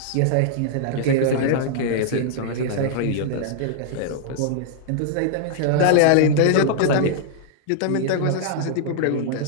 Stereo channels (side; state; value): both; different; correlation -0.01